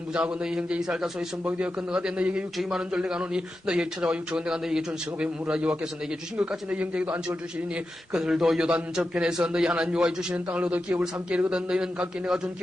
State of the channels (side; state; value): both; normal; correlation 0.90